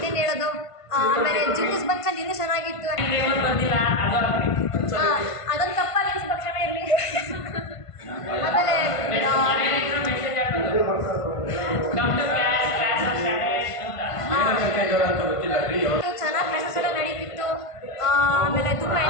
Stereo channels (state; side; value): late; right; 1.5 ms